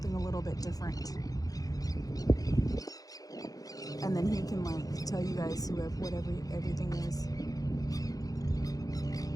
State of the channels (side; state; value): right; late; 0.17 ms